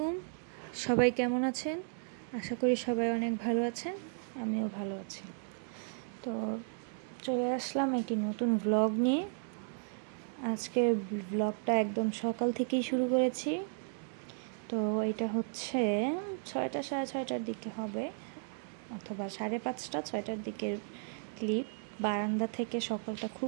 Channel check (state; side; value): silent; left; 55 dB below the other